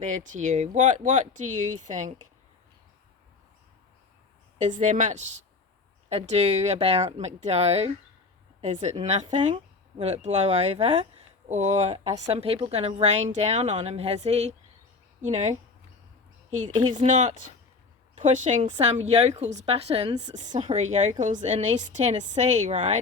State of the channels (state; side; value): quieter; right; 4.1 dB